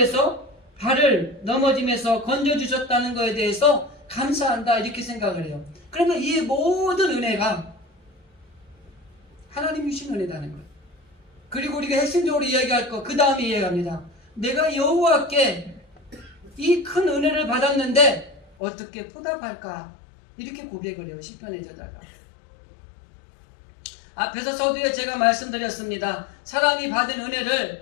발을 넘어짐에서 건져주셨다는 것에 대해서 감사한다, 이렇게 생각을 해요. 그러면 이 모든 은혜가 하나님이 주신 은혜라는 거예요. 그리고 우리가 핵심적으로 이야기할 거, 그 다음에 이야기합니다. 내가 여호와께 이 큰 은혜를 받았는데 어떻게 보답할까, 이렇게 고백을 해요, 시편의 저자가. 앞에서 서두에 제가 말씀드렸습니다. 사람이 받은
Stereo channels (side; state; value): right; drops out; at 18.5 s